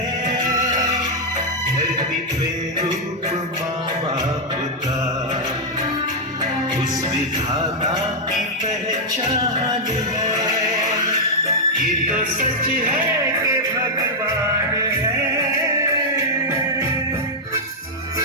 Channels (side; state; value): both; normal; correlation -0.04